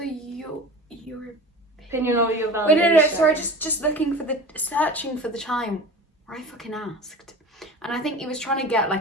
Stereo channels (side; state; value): both; normal; correlation 0.36